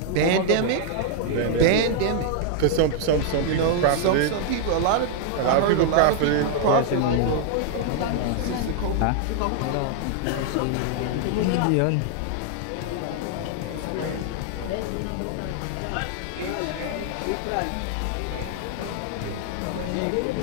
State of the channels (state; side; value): different; both; correlation 0.00